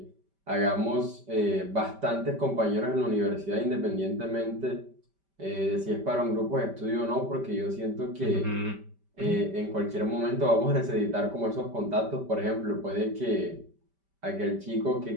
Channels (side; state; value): left; late; 5.1 ms